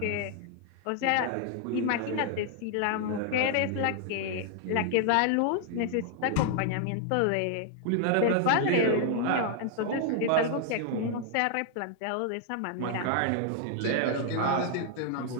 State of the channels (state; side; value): different; both; correlation 0.00